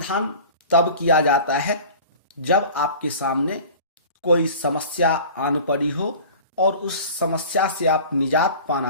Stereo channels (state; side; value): inverted; both; correlation -0.40